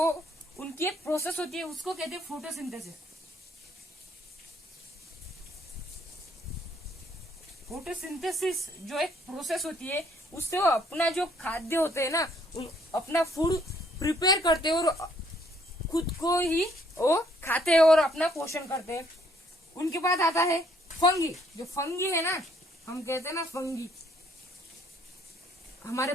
उनकी एक प्रोसेस होती है, उसको कहते हैं फोटोसिंथेसिस। फोटोसिंथेसिस जो एक प्रोसेस होती है, उससे वो अपना जो खाद्य होते हैं ना, अपना फूड प्रिपेयर करते हैं और खुद को ही वो खाते हैं और अपना पोषण करते हैं। उनके बाद आता है फंगी। जो फंगी है ना, हम कहते हैं ना फंगी, हमारे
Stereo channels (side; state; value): both; normal; correlation 0.66